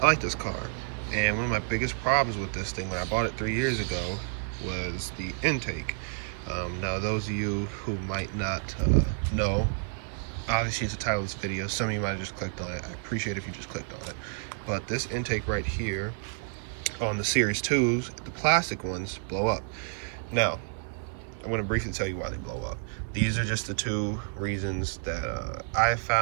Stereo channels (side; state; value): left; silent; 58 dB below the other